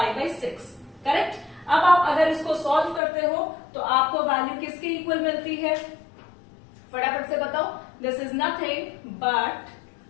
करेक्ट। अब आप अगर इसको सॉल्व करते हो तो आपको वैल्यू किसके इक्वल मिलती है? फटाफट से बताओ। This is nothing but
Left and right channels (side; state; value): right; drops out; at 3.0 s